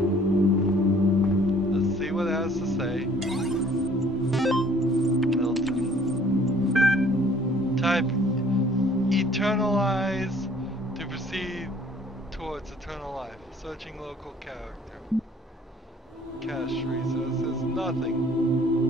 eternalize to proceed towards eternal life. Searching local character. Cache resources, nothing.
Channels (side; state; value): both; normal; correlation 0.56